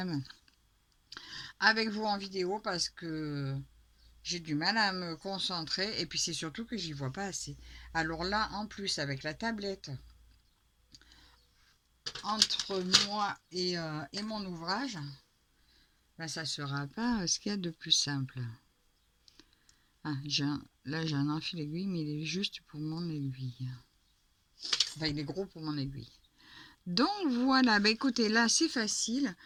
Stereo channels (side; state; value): both; identical; correlation 1.00